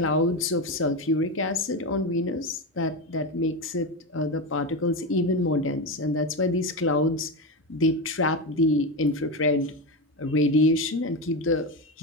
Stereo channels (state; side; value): normal; both; correlation 0.16